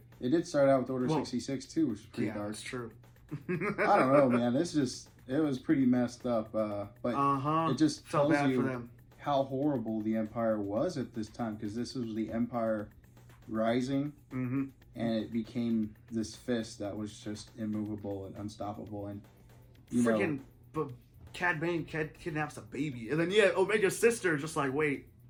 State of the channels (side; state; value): both; identical; correlation 1.00